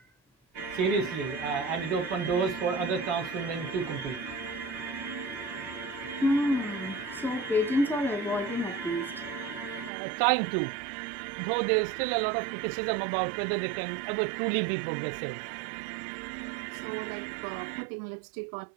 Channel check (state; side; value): drops out; left; at 9.9 s